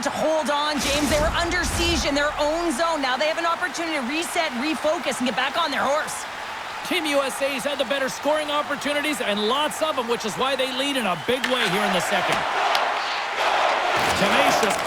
hold on, James. They were under siege in their own zone. Now they have an opportunity to reset, refocus, and get back on their horse. Team USA's had the better scoring opportunities and lots of them, which is why they lead in a big way here in the second. Tenacious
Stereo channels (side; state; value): both; identical; correlation 1.00